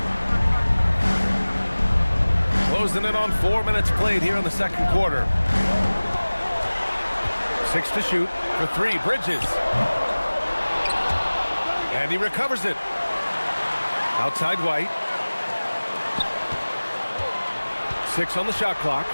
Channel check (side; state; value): both; inverted; correlation -1.00